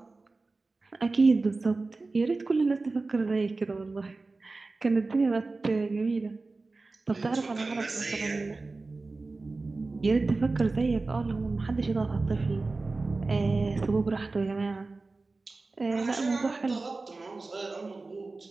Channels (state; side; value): quieter; left; 3.6 dB